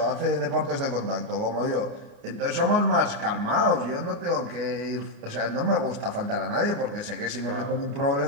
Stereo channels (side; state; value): left; late; 29 ms